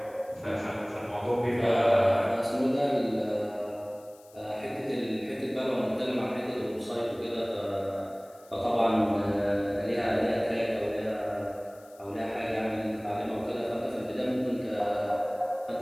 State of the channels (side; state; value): left; noise; hiss, 27 dB below the sound